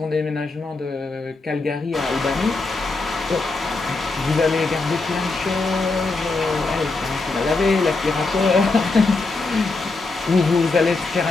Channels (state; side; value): quieter; right; 3.6 dB